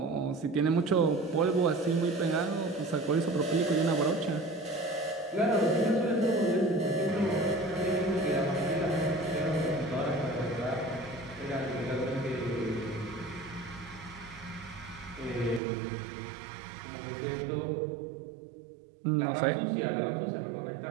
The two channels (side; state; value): left; drops out; at 15.6 s